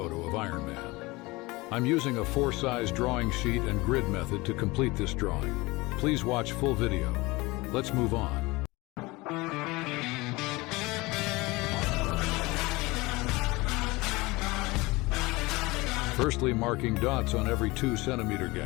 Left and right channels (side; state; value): right; quieter; 22.6 dB